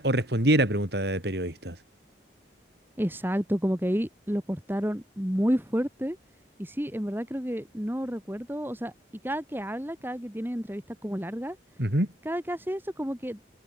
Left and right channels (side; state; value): both; normal; correlation 0.74